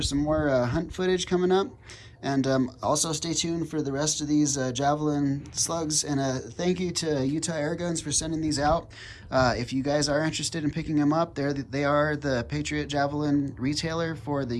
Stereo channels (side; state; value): both; identical; correlation 1.00